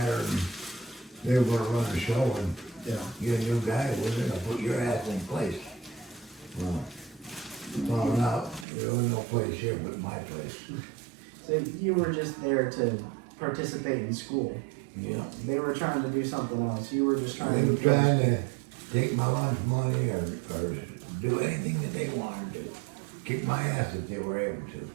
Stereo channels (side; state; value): left; drops out; at 8.7 s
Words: and they were going to run the show, and Yeah. you're a new guy, we're going to put your ass in place. Well, found out there was no place here but my place. So you were just there to participate in school. Yeah. They were trying to do something else. You were just trying They to. were trying to take my lunch money or do anything that they wanted to. Kick my ass if they were able to.